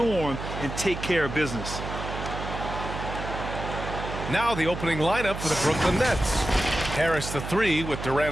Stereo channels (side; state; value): right; noise; hum, 7 dB below the sound